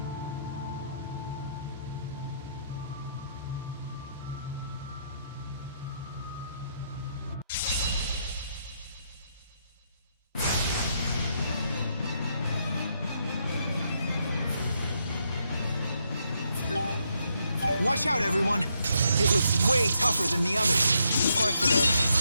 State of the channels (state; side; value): inverted; both; correlation -0.77